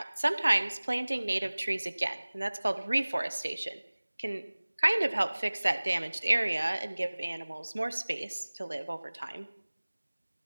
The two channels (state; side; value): inverted; both; correlation -1.00